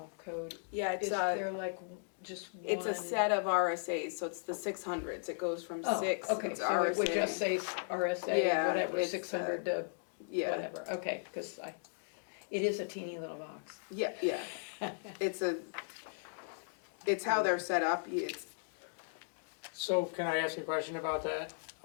code, Yeah, it's is there like just one? it's a set of RSAs, so it's the 600s. It goes from Oh, 6. okay, it's so it would RSA. just say RSA, Yeah, whatever, it's, 600 to Yeah, whatever, okay, because it is a teeny little box. yeah. It's how they're set up. It's So can I ask a question about that?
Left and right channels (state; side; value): silent; right; digital silence